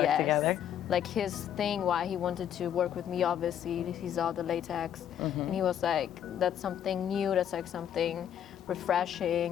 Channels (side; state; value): right; quieter; 9.7 dB